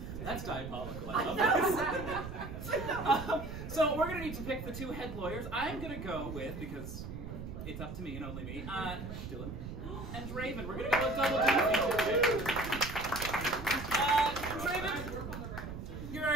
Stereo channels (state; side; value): noise; right; rumble, 8 dB below the sound